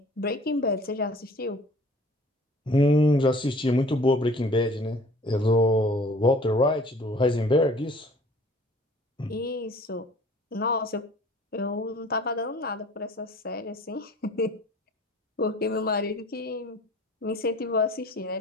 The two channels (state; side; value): normal; both; correlation 0.50